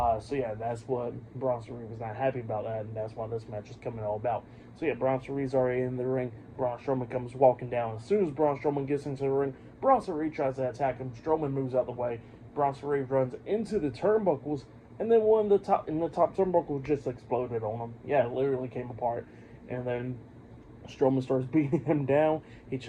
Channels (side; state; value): both; identical; correlation 1.00